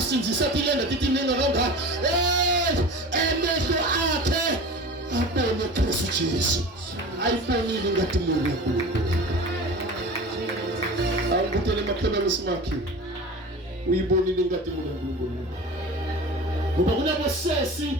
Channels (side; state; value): both; normal; correlation 0.35